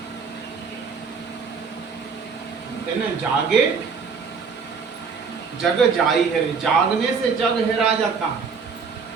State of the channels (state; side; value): quieter; left; 5.6 dB